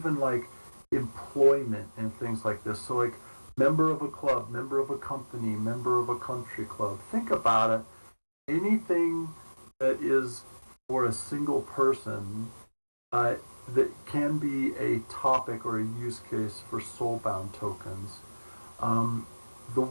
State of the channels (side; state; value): both; inverted; correlation -1.00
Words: like employment and things like this. So like member of a club, member of a company, member of a country club. Think about it. Anything that is for a single person that can be a topic or a use case for soulbound tokens. The